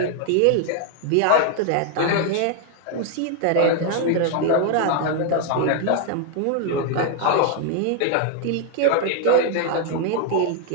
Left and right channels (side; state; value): both; different; correlation 0.00